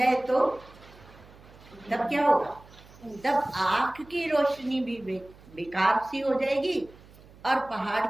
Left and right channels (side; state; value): right; noise; hum, 23 dB below the sound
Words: तो तब क्या होगा? तब आंख की रोशनी भी बेकार सी हो जाएगी, और पहाड़